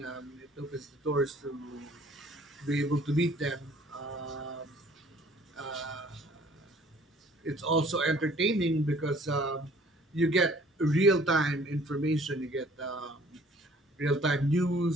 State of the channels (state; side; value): normal; both; correlation 0.55